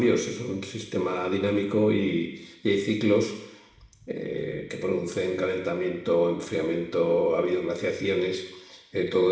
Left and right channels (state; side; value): identical; both; correlation 1.00